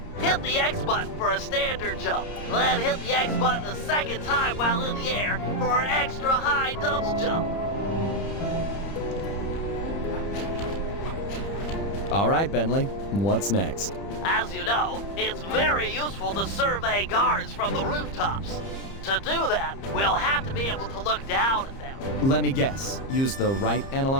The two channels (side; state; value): right; late; 30 ms